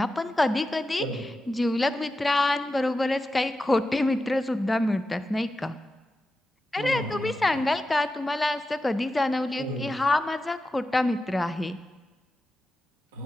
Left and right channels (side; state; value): both; normal; correlation 0.91